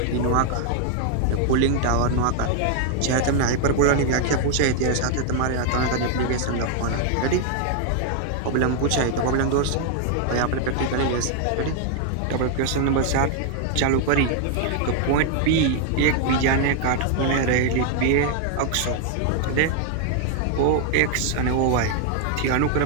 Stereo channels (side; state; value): both; different; correlation 0.00